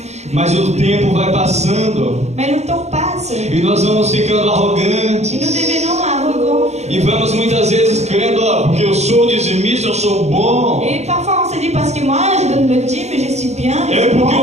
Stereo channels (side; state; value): left; late; 0.32 ms